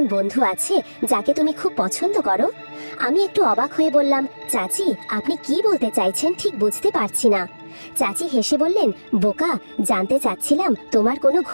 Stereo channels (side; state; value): both; inverted; correlation -1.00